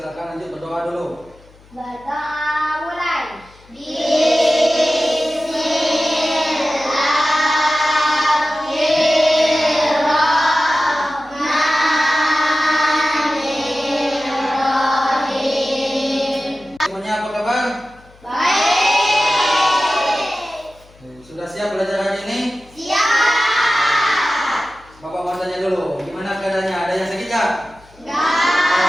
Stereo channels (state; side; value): noise; left; hum, 26 dB below the sound